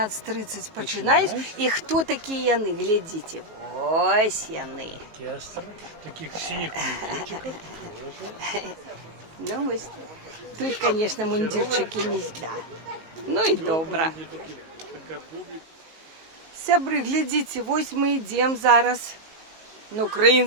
починают. И кто такие яны? Глядите. Ось яны. Оркестр таких синих мундирчиков тоже. Ну, ось. Тут, конечно, мундирчики не зля. Ну и добра. Такая публика. Сябры, глядите, вось мы идем зараз на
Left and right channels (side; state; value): left; late; 19 ms